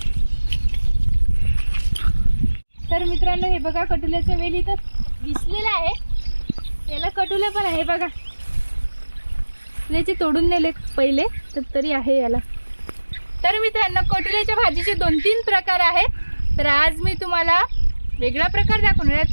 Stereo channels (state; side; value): inverted; both; correlation -1.00